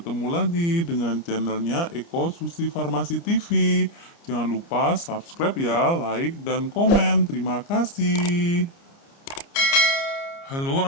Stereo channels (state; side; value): late; right; 29 ms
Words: lagi dengan channelnya Eko Susi Farmasi TV. Jangan lupa subscribe ya, like dan komen. Terima kasih. Halo